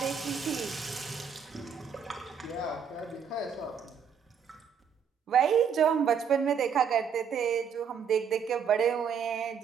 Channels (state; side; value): quieter; left; 7.0 dB